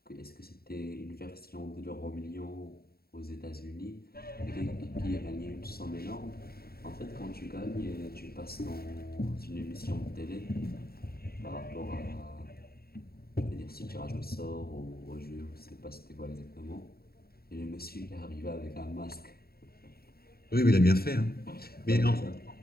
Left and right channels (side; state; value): right; late; 0.45 ms